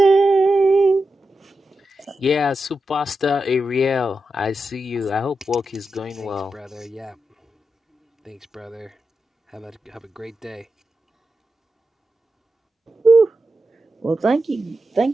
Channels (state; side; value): normal; both; correlation 0.89